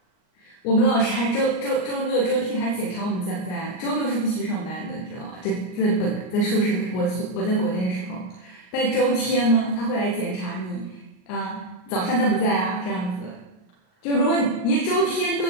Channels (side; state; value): right; late; 38 ms